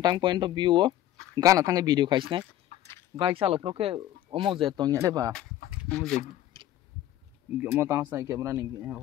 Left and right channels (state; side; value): quieter; right; 13.0 dB